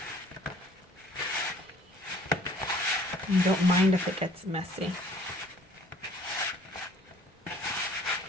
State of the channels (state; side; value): normal; both; correlation 0.55